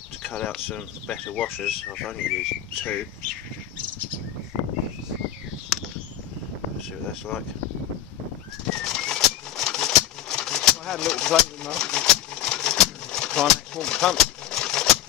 to cut out some better washers. I've only used 2. Let's see what that's like. I had a little play with my Climax water pump.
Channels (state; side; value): quieter; right; 11.7 dB